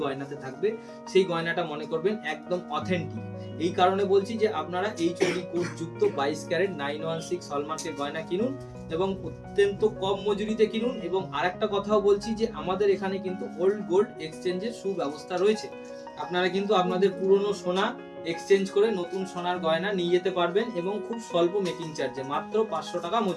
গয়নাতে থাকবে সেই গয়নাটা মনে করবেন একদম অথেন্টিক। এই কারণে বলছি যে আপনারা HUID কোড যুক্ত 22 ক্যারেট 916 হলমার্কের গয়না কিনুন এবং অত্যন্ত কম মজুরিতে কিনুন। এবং আরেকটা কথাও বলছি যে আমাদের এখানে কিন্তু ওল্ড গোল্ড এক্সচেঞ্জের সুব্যবস্থা রয়েছে। আপনারা কিন্তু আপনাদের পুরনো সোনা এক্সচেঞ্জ করে নতুন সোনার গয়না নিয়ে যেতে পারবেন এবং খুব স্বল্প মেকিং চার্জে, মাত্র 500 টাকা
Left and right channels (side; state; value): both; identical; correlation 1.00